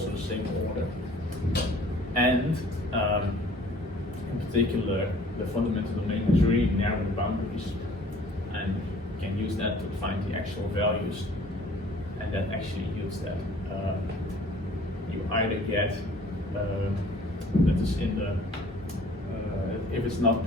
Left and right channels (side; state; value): both; normal; correlation 0.53